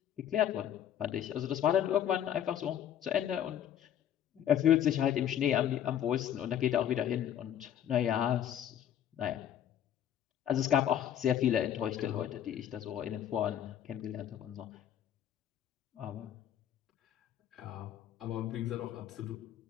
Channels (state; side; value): quieter; right; 10.3 dB